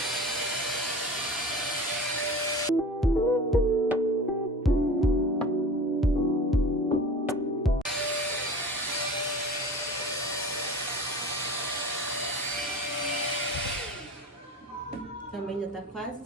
Também já tá quase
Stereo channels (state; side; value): normal; both; correlation 0.37